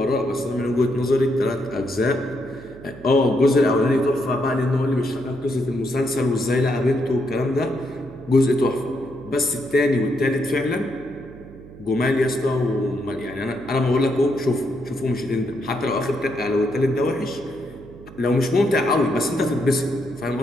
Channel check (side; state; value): right; noise; hum, 18 dB below the sound